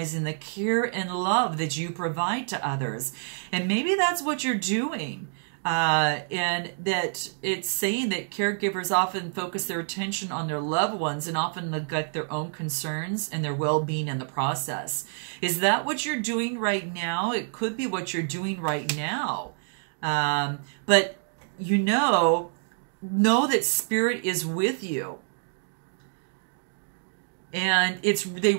the care and love that you provide to others. And maybe that's what you're doing. And that it's saying that caregivers often focus their attention on their loved ones and often neglect their own concerns and their well-being in the process. Is that what you're doing right now? It could be what you're doing right now. But you know that spirit is with you. And they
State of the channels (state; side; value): silent; left; digital silence